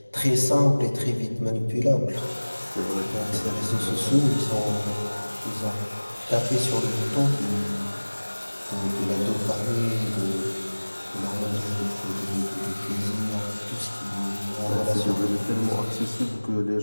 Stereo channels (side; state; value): both; inverted; correlation -1.00